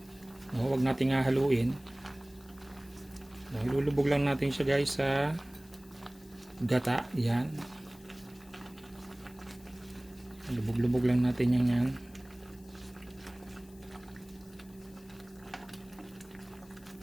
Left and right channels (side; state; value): left; noise; hiss, 26 dB below the sound